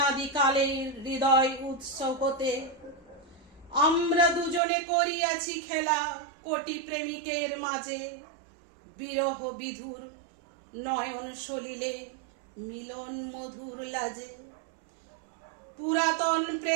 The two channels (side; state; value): left; drops out; at 4.6 s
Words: হৃদয় উৎস হতে আমরা দুজনে করিয়াছি খেলা কোটি প্রেমিকের মাঝে। বিরহ বিধুর নয়ন সলিলে মিলন মধুর লাজে, পুরাতন